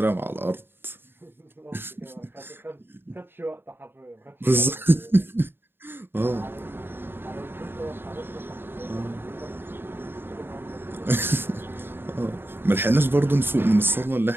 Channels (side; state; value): left; late; 0.10 ms